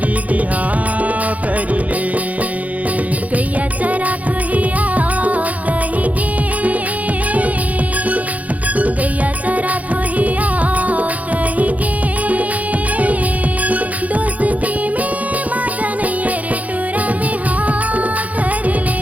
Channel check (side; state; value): left; late; 0.072 ms